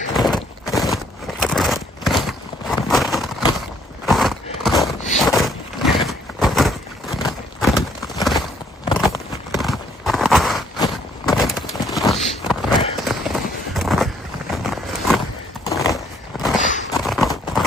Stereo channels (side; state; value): both; normal; correlation 0.65